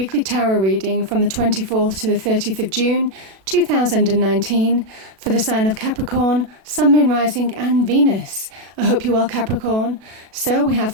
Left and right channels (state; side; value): late; left; 37 ms